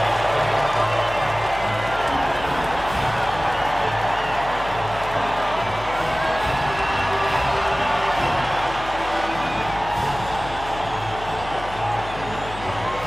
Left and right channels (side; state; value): left; noise; hum, 13 dB below the sound